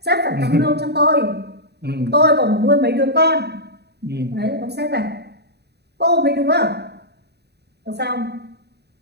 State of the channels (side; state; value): left; late; 0.48 ms